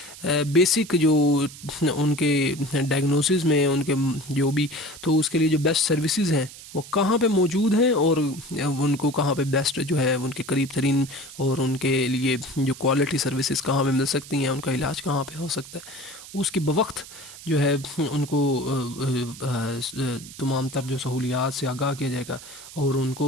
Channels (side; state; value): right; noise; hiss, 16 dB below the sound